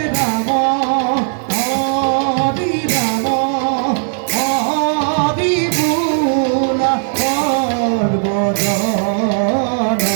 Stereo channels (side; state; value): left; silent; digital silence